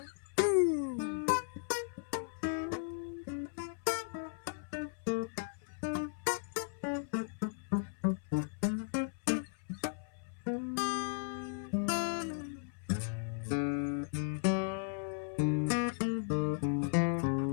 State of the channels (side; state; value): right; silent; 54 dB below the other